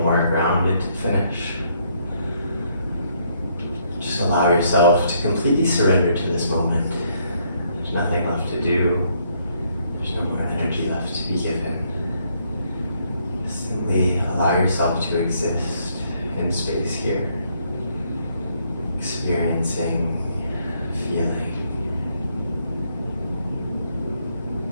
more grounded to finish. Just allow yourself to completely surrender to this moment. There's nothing left to do. There's no more energy left to be given. Simply allow yourself to exist in space here, experiencing, feeling.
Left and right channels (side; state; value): both; inverted; correlation -0.71